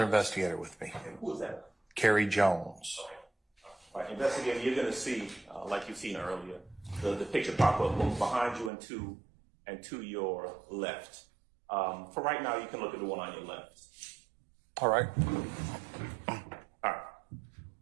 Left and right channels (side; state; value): left; drops out; at 8.7 s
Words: investigator with me, And who is that? Carrie Jones. Okay. All right, investigator, you're going to see, like you've seen earlier, the picture pop up both behind you and to your left. For right now, you can look at the one on your left. All right. All right.